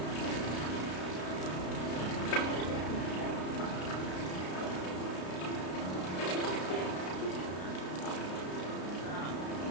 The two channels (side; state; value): right; late; 33 ms